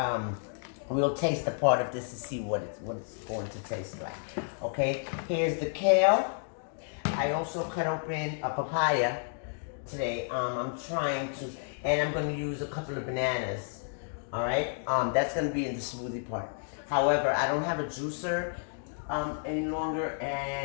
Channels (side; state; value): right; silent; digital silence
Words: We'll taste a part of this to see what it's going to taste like. Okay, here's the kale. I also cut open a papaya today. I'm trying to, and I'm going to use a couple of bananas. All right, that's going to be in the smoothie part. However, I don't have a juicer any longer,